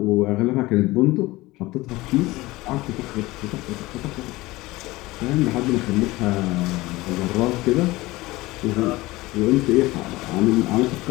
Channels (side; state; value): right; quieter; 19.8 dB